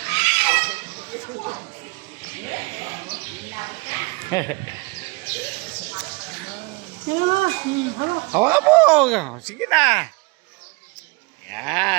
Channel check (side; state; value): left; quieter; 27.4 dB